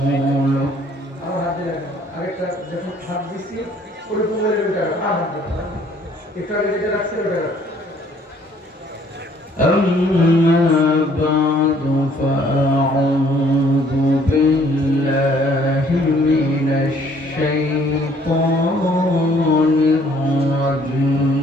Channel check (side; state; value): both; normal; correlation 0.61